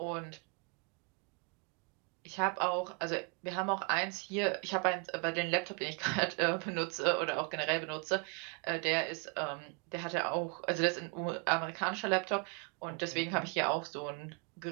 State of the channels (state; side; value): quieter; left; 34.1 dB